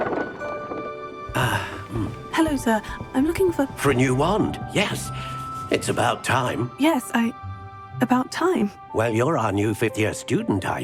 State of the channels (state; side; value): identical; both; correlation 1.00